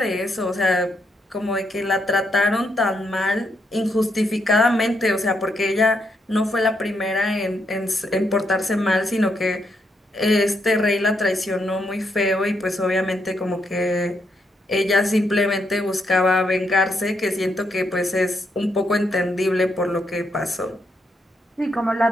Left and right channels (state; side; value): normal; both; correlation 0.78